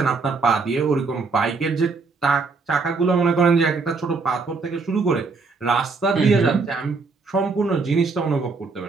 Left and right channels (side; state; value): left; quieter; 4.3 dB